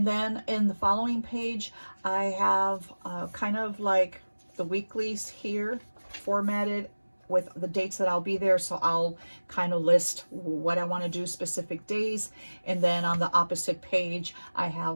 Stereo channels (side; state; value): both; inverted; correlation -1.00